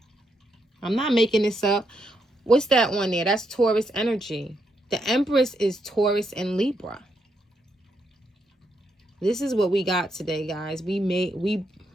I'm not making this up. What's that one there? That's Taurus energy. The Empress is Taurus and Libra. This is what we got today, guys. We're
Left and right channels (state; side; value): normal; both; correlation 0.79